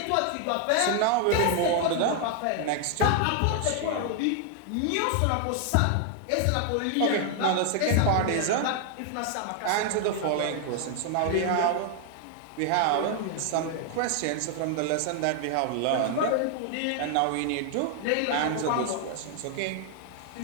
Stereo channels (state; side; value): different; both; correlation 0.00